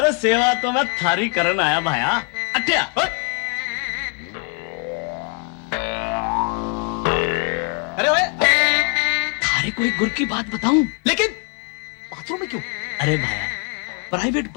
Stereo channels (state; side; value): quieter; right; 35.3 dB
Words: सेवा तो मैं थारी करन आया भाया। अट्या अरे ओए, थारे को एक गुर की बात बताऊं? लेकिन बाथरूम में क्यों? अरे भाया, प्राइवेट